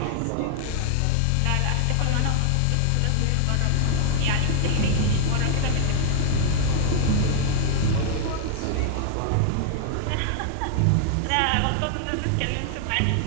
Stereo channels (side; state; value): both; different; correlation 0.00